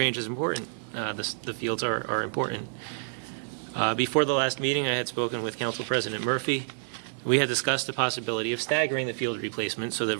is important. The fields are important. Before the last meeting, I had spoken with Council President Murphy. We had discussed the possibility of staggering the field replacement so that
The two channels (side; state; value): left; silent; digital silence